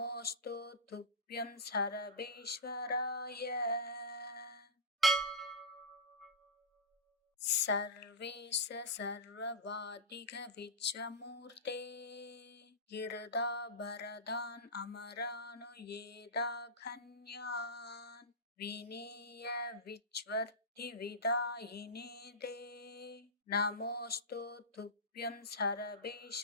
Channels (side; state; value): both; normal; correlation -0.12